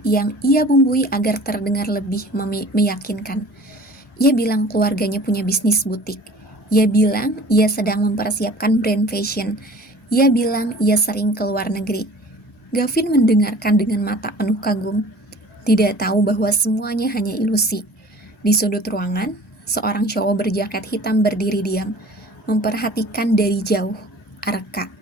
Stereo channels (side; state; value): both; normal; correlation 0.46